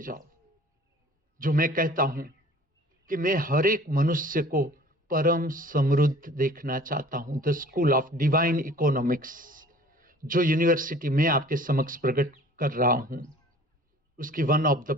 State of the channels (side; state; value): both; normal; correlation 0.48